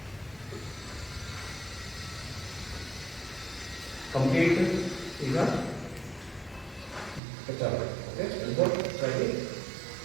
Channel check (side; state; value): left; drops out; at 7.2 s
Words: ಕಂಪ್ಲೀಟ್. ಈಗ ಓಕೆ, ಎಲ್ಬೋ ಸೈಡಿ